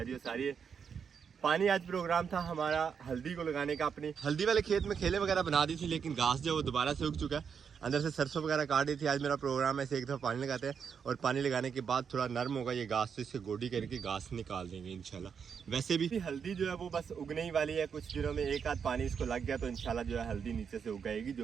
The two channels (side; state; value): left; quieter; 6.8 dB